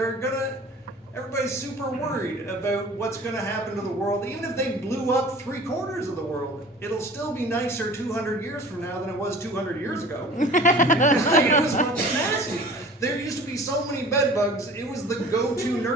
super worried about what's gonna happen to the world. Even if they blew up 3/4 of the world, it'll still be nicer 200 years from now than it was 200 years ago. Like, it was fucking nasty. There used to be so many bed bugs, it was the go-to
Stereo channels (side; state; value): both; normal; correlation 0.44